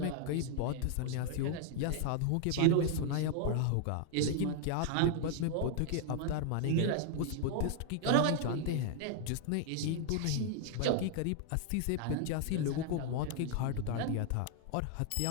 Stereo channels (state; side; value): different; both; correlation 0.00